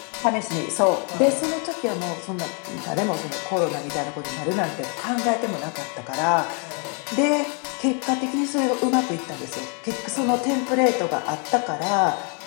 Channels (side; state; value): right; quieter; 37.3 dB